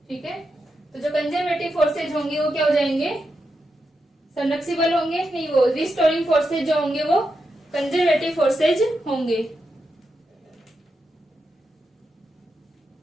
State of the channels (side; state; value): both; normal; correlation 0.86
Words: ठीक है। तो जो कंजर्वेटिव फोर्सेज होंगे वो क्या हो जाएंगे, संरक्षी बल होंगे, नहीं, वो रिस्टोरिंग फोर्सेज जो होंगे वो कंजर्वेटिव फोर्सेज होंगे।